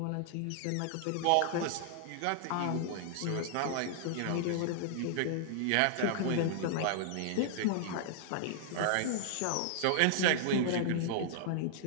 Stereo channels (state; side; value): different; both; correlation -0.01